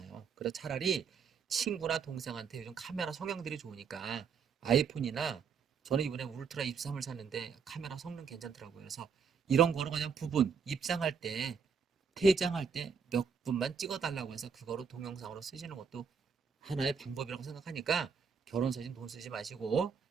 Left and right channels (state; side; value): quieter; left; 6.2 dB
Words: 그래서 차라리 친구나 동생한테 요즘 카메라 성향들이 좋으니까 아이폰이나 저는 이번에 울트라 입3을 샀는데 카메라 성능 괜찮더라고요. 그래서 이런 거로 그냥 부분 입장할 때 퇴장할 때 몇 분만 찍어달라고 해서 그거로 동영상으로 쓰시는 것도 하나의 방법이라고 생각하니까 결혼사진 돈 쓰지 마시고